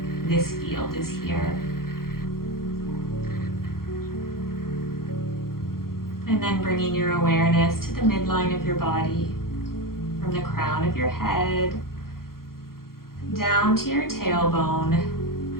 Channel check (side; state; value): right; late; 0.92 ms